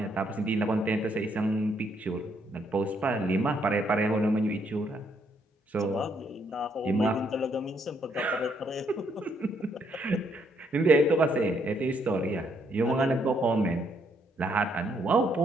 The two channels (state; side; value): normal; both; correlation 0.72